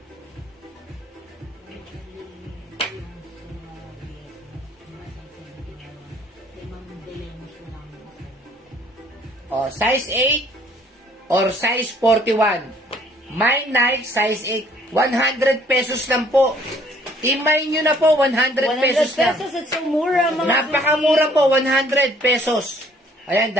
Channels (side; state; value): both; normal; correlation 0.59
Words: O, size 8 or size 41. My Nike, size 8. 100 pesos lang po. Imay nyo na po, 100 pesos 100 lang. pesos, it's so mura mga Napakamura po, 100 pesos. Ayan,